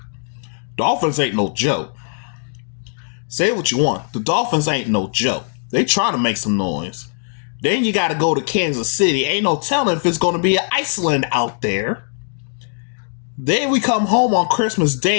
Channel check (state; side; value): silent; right; digital silence